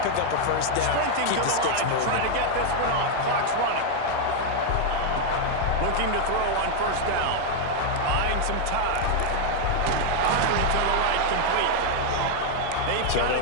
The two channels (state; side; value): different; both; correlation 0.01